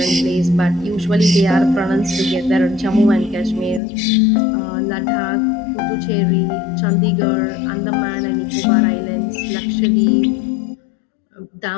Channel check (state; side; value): drops out; right; at 3.8 s